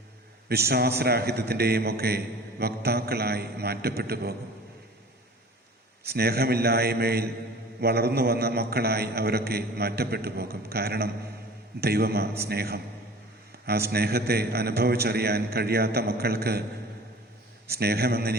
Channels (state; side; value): normal; both; correlation 0.43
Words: വിശ്വാസരാഹിത്യത്തിൻ്റെയും ഒക്കെ വക്താക്കളായി മാറ്റപ്പെട്ടു പോകും. സ്നേഹമില്ലായ്മയിൽ വളർന്നു വന്ന മക്കളായി അവരൊക്കെ മാറ്റപ്പെട്ടു പോകും. കാരണം ദൈവമാ സ്നേഹം. ആ സ്നേഹത്തെ അനുഭവിച്ചറിയാൻ കഴിയാത്ത മക്കൾക്ക്